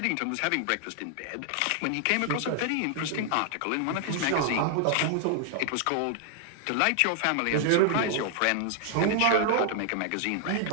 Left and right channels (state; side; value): different; both; correlation 0.00